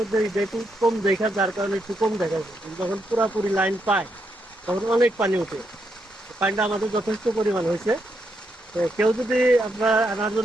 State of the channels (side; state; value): both; normal; correlation 0.80